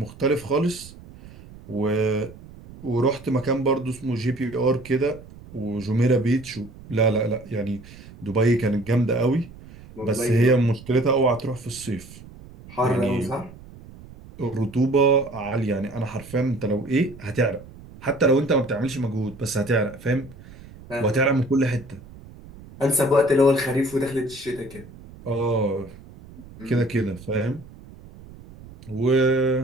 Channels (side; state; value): right; noise; rumble, 19 dB below the sound